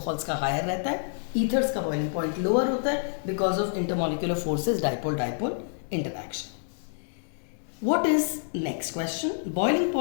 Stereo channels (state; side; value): silent; right; digital silence